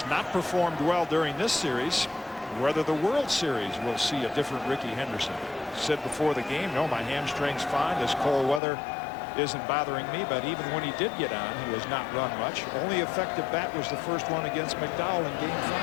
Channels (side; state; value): right; drops out; at 8.6 s